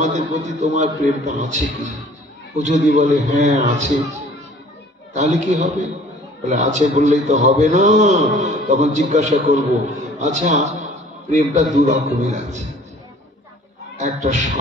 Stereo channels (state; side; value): normal; both; correlation 0.51